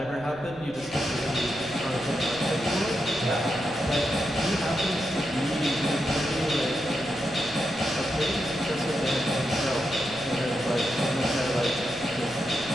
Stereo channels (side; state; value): left; noise; rumble, 21 dB below the sound